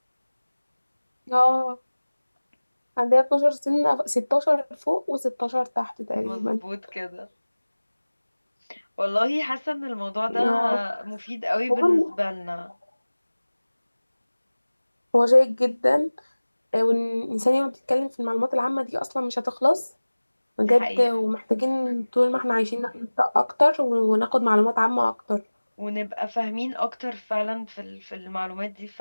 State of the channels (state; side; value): inverted; both; correlation -1.00